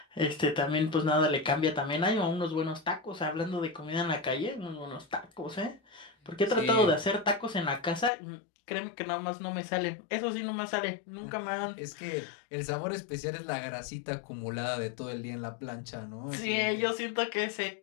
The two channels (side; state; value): right; drops out; at 8.1 s